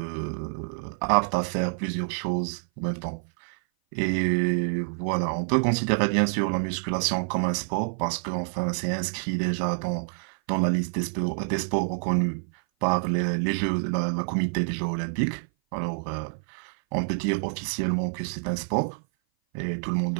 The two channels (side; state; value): left; silent; 56 dB below the other